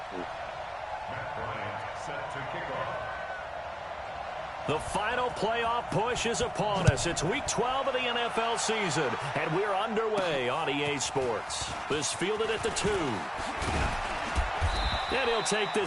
Matt Bryant set to kick off. The final playoff push is upon us. It's Week 12 of the NFL season, and we're underway on EA Sports. This fielded at the 2. And he'll take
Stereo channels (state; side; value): identical; both; correlation 1.00